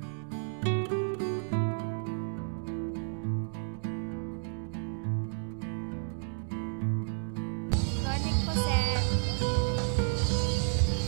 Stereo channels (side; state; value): left; silent; 57 dB below the other